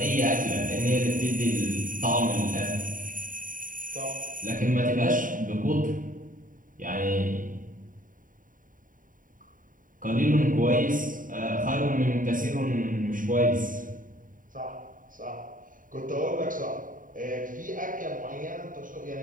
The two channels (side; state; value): left; late; 0.39 ms